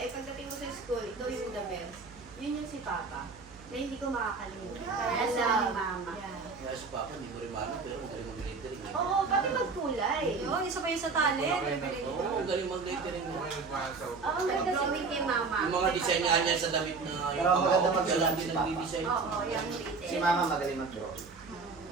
pagdating mo sa school, ikaw yung the best. Yun yung si Papa, na hindi ko makakalimutan. Kaya sa mama. Yeah. Kaya si Papa, hindi ko rin maano, pero magaling mag-lettering. Oo, pati magkulay. Yun, isa pa yung sa talent. Oo, magaling mag-lettering. Okay, nagmahal sa Oo, maganda Drawing kay mama. Yung mga design nga niya sa damit na yung Pero mga maganda official mag-design lang si din Papa. nag-design. Oo, yung Si detail. Mama magaling mag-draw.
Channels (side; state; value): left; quieter; 4.4 dB